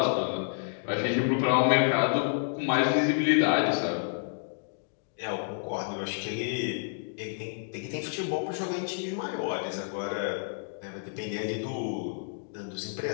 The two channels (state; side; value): silent; right; digital silence